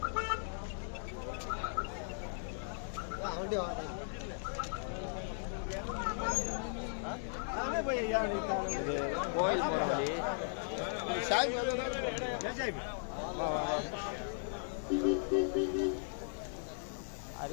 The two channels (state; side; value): silent; right; digital silence